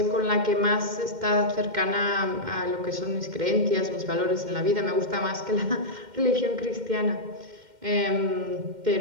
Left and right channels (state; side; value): late; left; 2.1 ms